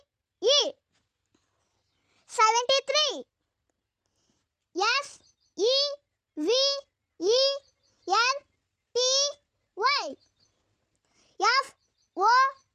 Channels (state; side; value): identical; both; correlation 1.00